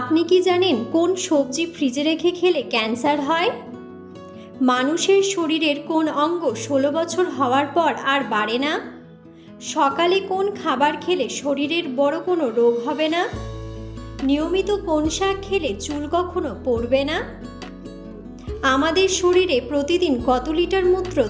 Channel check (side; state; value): both; identical; correlation 1.00